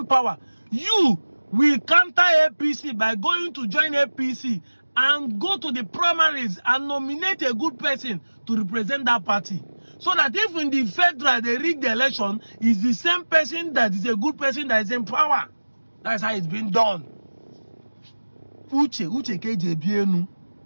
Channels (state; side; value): inverted; both; correlation -1.00